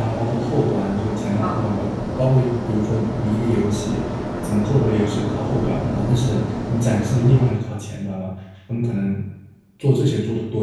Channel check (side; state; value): both; identical; correlation 1.00